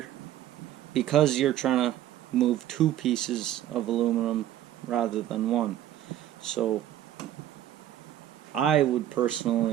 because you're trying to move two pieces of aluminum rather than one. So I would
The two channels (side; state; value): left; quieter; 12.3 dB